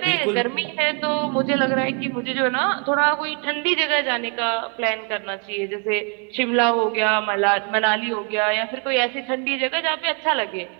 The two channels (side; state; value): left; quieter; 38.2 dB